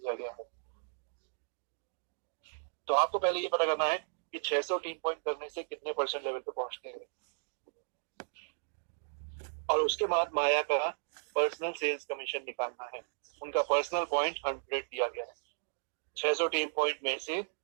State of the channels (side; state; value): left; silent; digital silence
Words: गया है। तो आपको पहले ये पता करना है कि 600 टीम पॉइंट करने से कितने परसेंट लेवल पे पहुंचते हैं, और उसके बाद माया का पर्सनल सेल्स कमीशन निकालना है। उनका पर्सनल पॉइंट 100 दिया गया है। 600 टीम पॉइंट में से